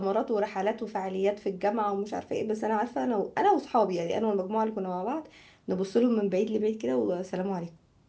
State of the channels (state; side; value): identical; both; correlation 1.00